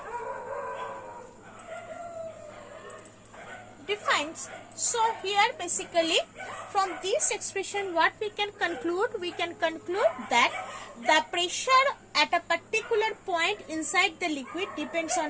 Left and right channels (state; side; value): identical; both; correlation 1.00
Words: defines. So here basically from this expression what we can conclude? We can conclude that the pressure at a particular point inside the liquid depends